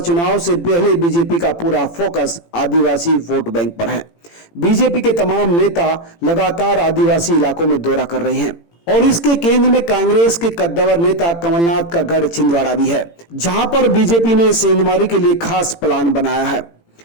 से पहले बीजेपी का पूरा फोकस आदिवासी वोट बैंक पर है। बीजेपी के तमाम नेता लगातार आदिवासी इलाकों में दौरा कर रहे हैं और इसके केंद्र में कांग्रेस के कद्दावर नेता कमलनाथ का गढ़ छिंदवाड़ा भी है, जहां पर बीजेपी ने सेंधमारी के लिए खास प्लान बनाया है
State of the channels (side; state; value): right; late; 18 ms